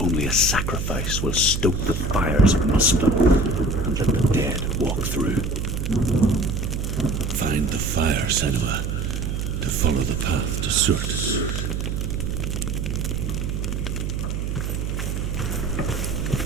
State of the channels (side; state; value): right; noise; hum, 2 dB below the sound